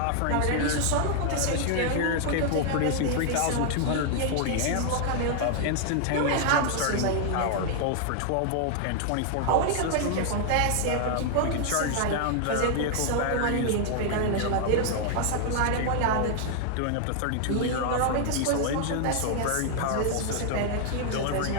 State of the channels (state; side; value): different; both; correlation 0.00